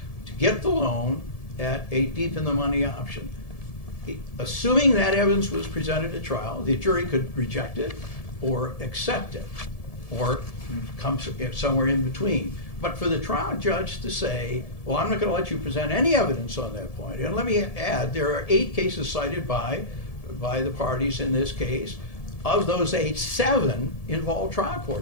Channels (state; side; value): late; right; 1.7 ms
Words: to get the loan at a deep in the money option. Assuming that evidence was presented at trial, the jury could reject it or accept it or come somewhere in between. But for the trial judge to say, well, I'm not going to let you present any evidence on that point. And let me add, there are 8 cases cited by the parties in this case. Of those 8, 7 involve trial